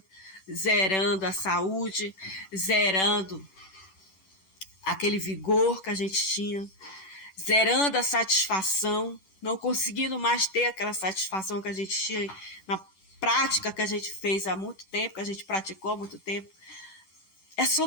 zerando a saúde, zerando aquele vigor que a gente tinha, zerando a satisfação, não conseguindo mais ter aquela satisfação que a gente tinha na prática que a gente fez há muito tempo, que a gente praticou há muito tempo. É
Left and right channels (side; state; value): right; late; 10 ms